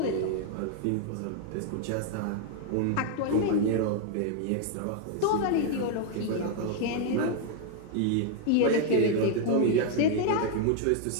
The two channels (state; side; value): different; both; correlation 0.00